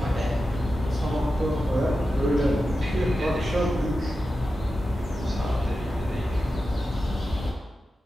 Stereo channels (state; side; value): normal; both; correlation 0.92